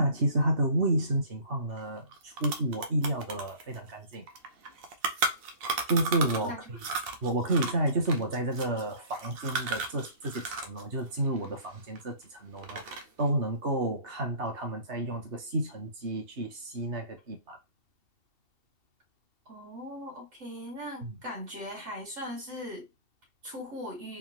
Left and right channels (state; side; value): late; left; 2.7 ms